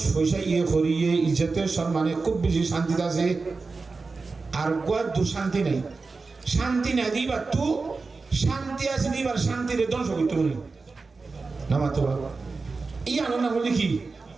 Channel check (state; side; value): quieter; left; 4.1 dB